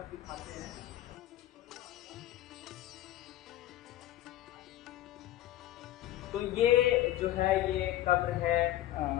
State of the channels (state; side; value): quieter; right; 14.1 dB